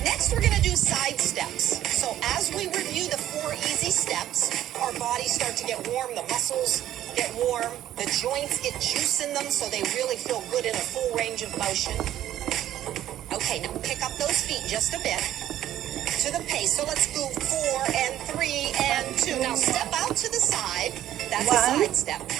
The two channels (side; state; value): left; quieter; 12.4 dB